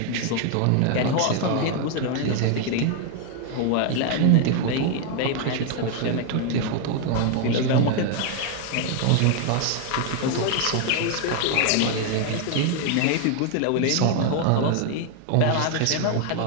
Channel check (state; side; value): different; both; correlation 0.01